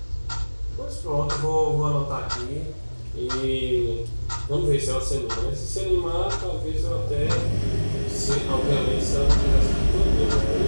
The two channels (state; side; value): inverted; both; correlation -1.00